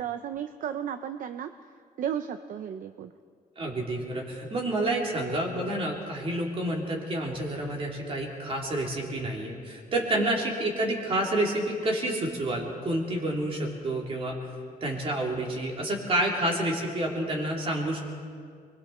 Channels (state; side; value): normal; both; correlation 0.44